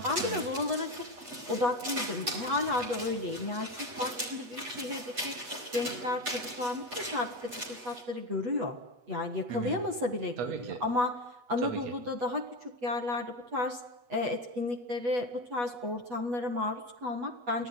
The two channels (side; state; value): left; late; 8.2 ms